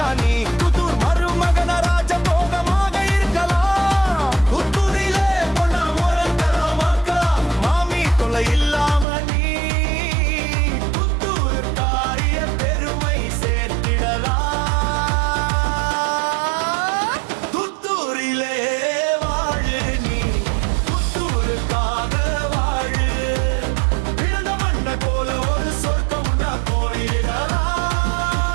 நீ, புத்தூர் மருமகன ராஜ போகமாக இருக்கலாம். புத்தூரிலே பொண்ண முறக்கலாம் மக்கா, மாமி தொலை இல்லாம நீ புத்தூர் காரிய பெருமை சேர்த்திடலாம். புத்தூரிலே வாழு நீ, புத்தூருக்காக வாழு. பிறந்த மண்ண போல ஒரு சொர்க்கம் உண்டா கோரிடலாம்.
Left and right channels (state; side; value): drops out; left; at 9.1 s